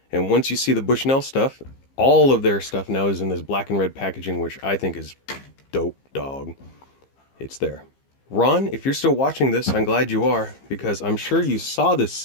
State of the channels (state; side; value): late; right; 15 ms